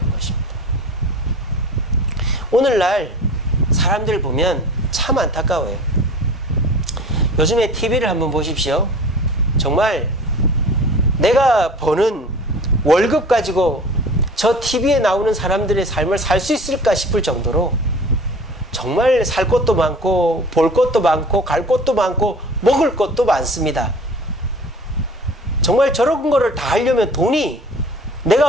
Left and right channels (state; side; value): normal; both; correlation 0.42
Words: 것입니다. 오늘날 사람들 보면 참 안타까워요. 요즘에 TV를 한번 보십시오. 정말 내가 버는 월급 가지고 저 TV에 나오는 사람들의 삶을 살 수 있을까 싶을 정도로 정말 살 것도 많고 볼 것도 많고 갈 것도 많고 먹을 것도 많습니다. 정말 저런 거를 다 하려면 돈이